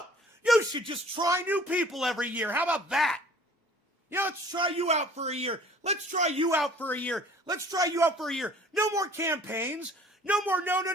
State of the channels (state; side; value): normal; both; correlation 0.51